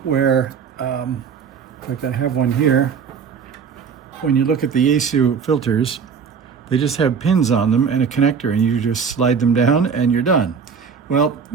where, in fact I have one here, when you look at the Yaesu filters, they just have pins on them and a connector, and you just slide them down and you're done. Well,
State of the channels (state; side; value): quieter; left; 6.4 dB